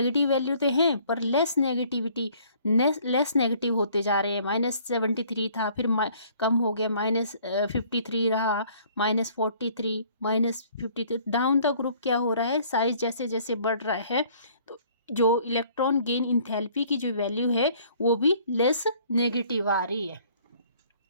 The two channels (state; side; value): inverted; both; correlation -0.57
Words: वैल्यू तो हैं पर लेस नेगेटिव होते जा रहे हैं। -73 था, फिर कम हो गया, -53 रहा, -43, -53, डाउन द ग्रुप क्या हो रहा है, साइज जैसे जैसे बढ़ रहा है तो जो इलेक्ट्रॉन गेन इंथैल्पी की जो वैल्यू है वो भी लेस नेगेटिव आ रही है।